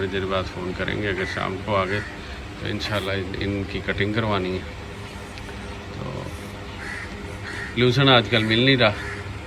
देर बाद फ़ोन करेंगे। अगर शाम को आ गए तो इंशाल्लाह इनकी कटिंग करवानी है। तो लूसन आजकल मिल नहीं रहा,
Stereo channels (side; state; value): both; identical; correlation 1.00